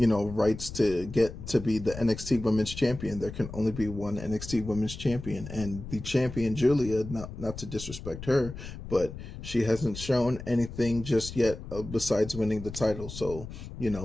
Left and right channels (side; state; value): left; noise; rumble, 11 dB below the sound